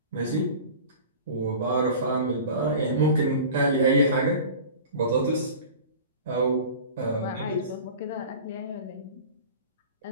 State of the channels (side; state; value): both; inverted; correlation -0.38